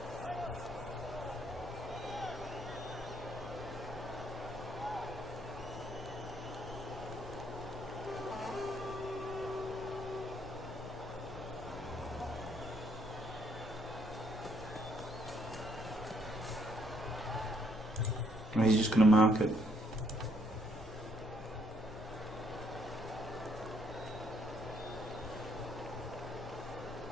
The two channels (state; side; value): normal; both; correlation 0.70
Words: And he's just going to mark it.